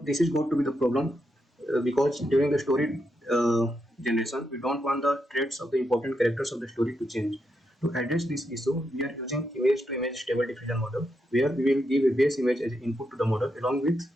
is going to be the problem because during the story generation, we don't want the traits of the important characters of the story to change. To address this issue, we are using image-to-image stable diffusion model, where we will give a base image as input to the model along with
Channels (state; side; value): normal; both; correlation 0.82